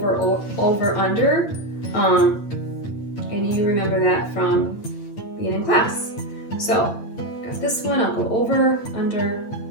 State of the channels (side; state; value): right; late; 8.5 ms